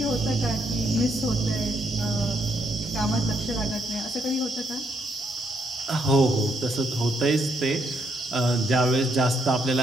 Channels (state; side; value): normal; both; correlation 0.75